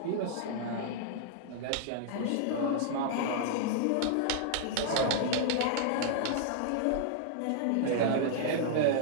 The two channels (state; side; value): different; both; correlation -0.01